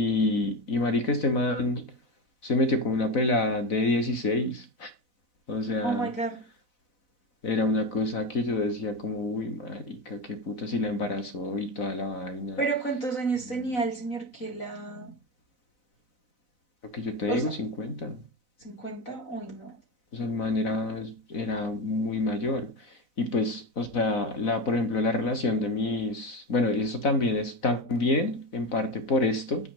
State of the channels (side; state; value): right; late; 4.0 ms